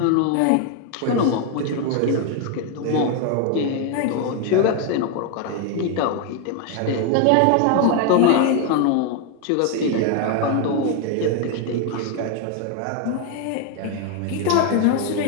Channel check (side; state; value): both; different; correlation 0.01